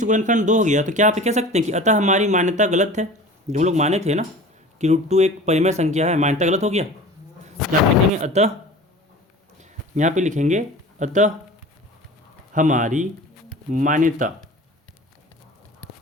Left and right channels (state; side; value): normal; both; correlation 0.39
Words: गुणनखंड 2 हो गया तो क्या आप कह सकते हैं कि अतः हमारी मान्यता गलत है, जो हम लोग माने थे ना कि √2 एक परिमेय संख्या है, मान्यता गलत हो गया। यहाँ लिखेंगे अतः, यहाँ पे लिखेंगे अतः हमारी मान्यता